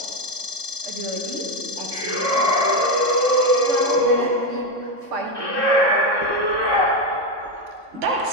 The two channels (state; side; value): late; left; 3.6 ms